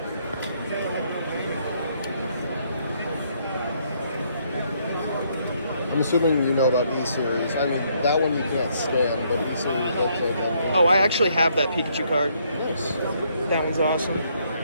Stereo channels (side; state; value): both; inverted; correlation -0.70